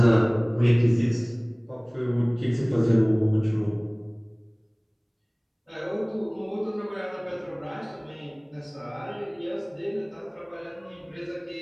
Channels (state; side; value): identical; both; correlation 1.00